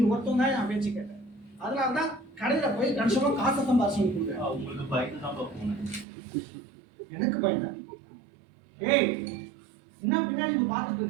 ஒருத்தன் தான் நான் பேச்சு கேட்டேன். அதனால தான் கடையில போய் கணிசமா காசை சம்பாதிச்சு கொடுக்குறேன். உங்களுக்கு பயந்து தான் போனேன். எனக்கு பயந்தா? ஏய் என்ன பின்னாடி நீ பார்த்துட்டு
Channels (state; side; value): drops out; left; at 6.1 s